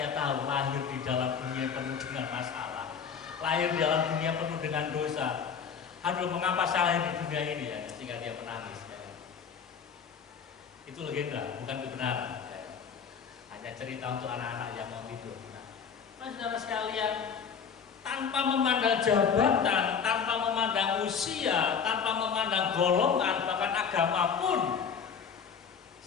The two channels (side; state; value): right; quieter; 6.7 dB